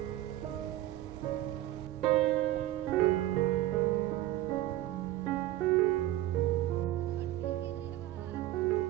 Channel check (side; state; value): left; quieter; 14.8 dB